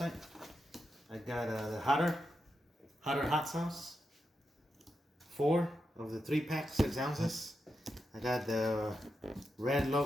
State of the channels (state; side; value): normal; both; correlation 0.87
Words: I got the Hotter hot sauce, 4 of the 3-pack, 6 ounces. I got the red